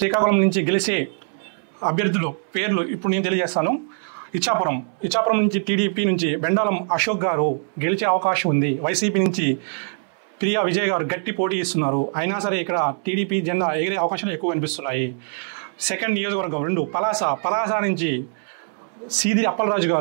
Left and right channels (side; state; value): left; silent; 64 dB below the other